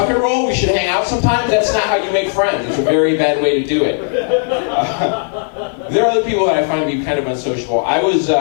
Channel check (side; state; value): right; silent; 64 dB below the other